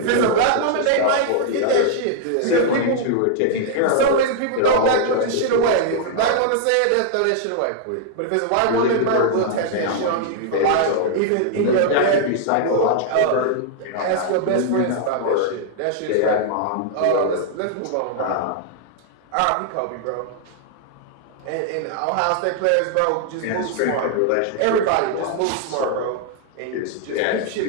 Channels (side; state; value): both; different; correlation -0.01